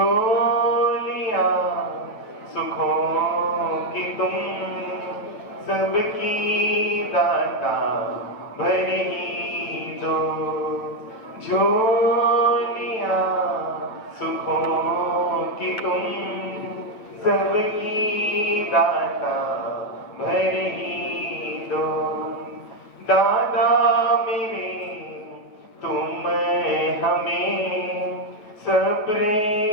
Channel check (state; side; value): late; right; 9.1 ms